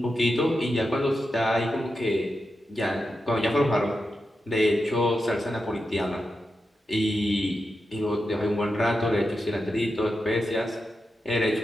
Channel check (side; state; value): both; normal; correlation 0.88